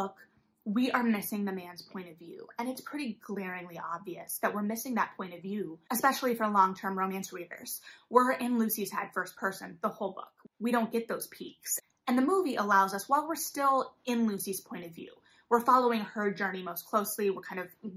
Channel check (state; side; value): identical; both; correlation 1.00